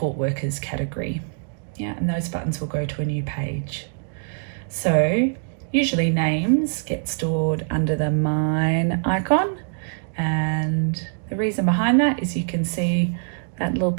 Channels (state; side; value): silent; left; digital silence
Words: workers category. Yeah, and those buttons will go to a new page. So usually names get stored under the mine icon, and the reason behind that is you can see that little